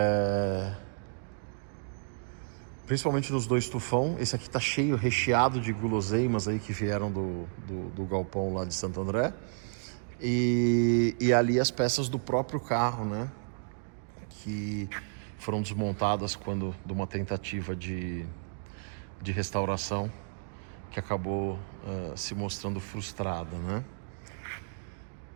Principalmente nos 2 Tufão. Esse aqui tá cheio, recheado de guloseimas aí que vieram do galpão lá de Santo André. E ali as peças do próprio carro, né? que foram desmontadas quando de uma tentativa de restauração que acabou se mostrando frustrada, né?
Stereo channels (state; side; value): silent; left; digital silence